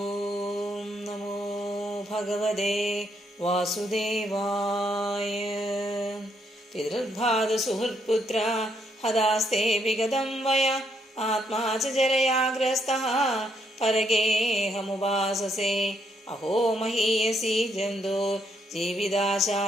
നമോ ഭഗവതേ വാസുദേവായ. പിതൃർഭാതസുഹൃത്പുത്ര ഹതാസ്തേ വിഗതം വയ ആത്മാ ച ജരയാഗ്രസ്തഃ പരഗേഹമുപാസസേ. അഹോ മഹീയസി ജന്തോ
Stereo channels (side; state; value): both; normal; correlation 0.74